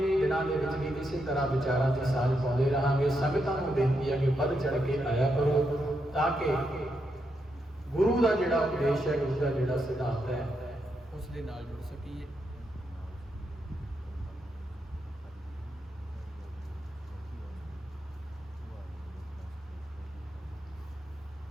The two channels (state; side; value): normal; both; correlation 0.82